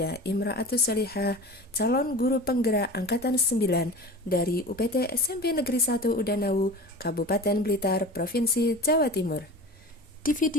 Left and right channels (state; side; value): normal; both; correlation 0.35